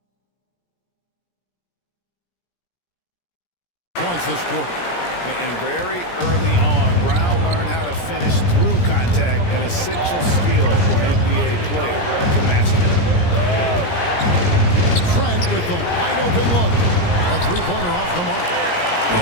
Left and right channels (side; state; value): right; late; 17 ms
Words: points this quarter. And very early on, Brown learned how to finish through contact, an essential skill for an NBA player to master. Trent with the wide open look. A 3-pointer off the mark.